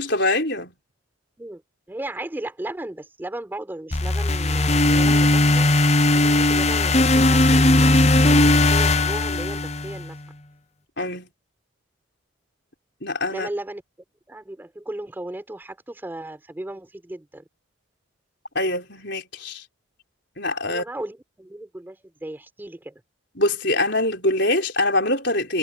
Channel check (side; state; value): both; normal; correlation 0.48